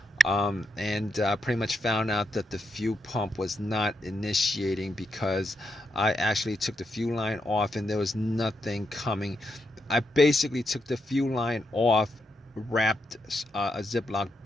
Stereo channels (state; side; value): normal; both; correlation 0.82